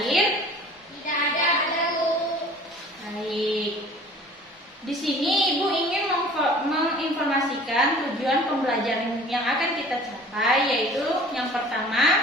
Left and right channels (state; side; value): normal; both; correlation 0.47